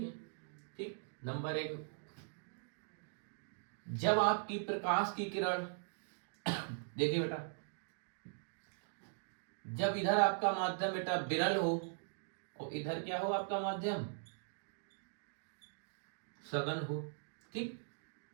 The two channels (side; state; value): left; silent; digital silence